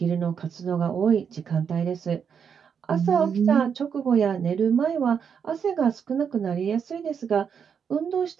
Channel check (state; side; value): quieter; left; 7.1 dB